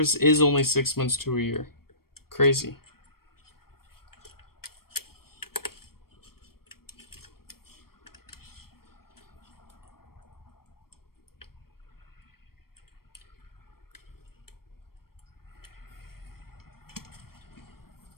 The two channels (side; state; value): right; late; 0.94 ms